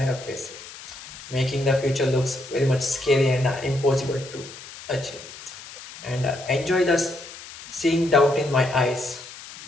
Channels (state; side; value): noise; left; hiss, 15 dB below the sound